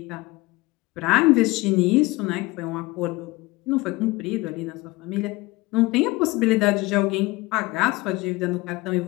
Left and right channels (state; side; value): quieter; right; 21.6 dB